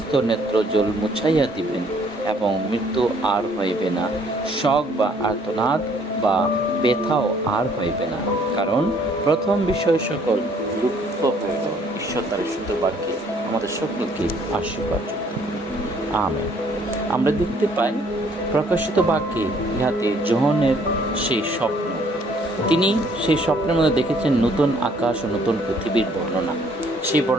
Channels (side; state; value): both; normal; correlation 0.62